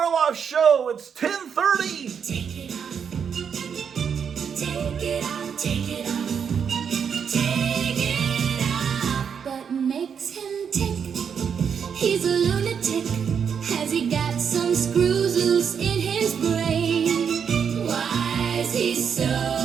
Show. It's 10:30. Take it off. Take it off. Take it off. Take it off. What makes him tick? He's a lunatic. Has he got some screws loose in his brain? Why is he so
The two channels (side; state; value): left; quieter; 7.1 dB